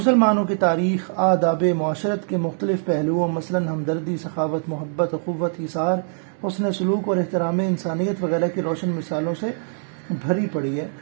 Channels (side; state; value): left; silent; digital silence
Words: کی تاریخ آداب معاشرت کے مختلف پہلوؤں مثلاً ہمدردی، سخاوت، محبت، اخوت، ایثار، حسن سلوک اور احترام انسانیت وغیرہ کی روشن مثالوں سے بھری پڑی ہے۔